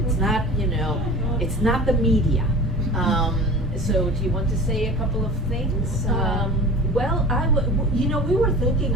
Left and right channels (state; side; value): normal; both; correlation 0.37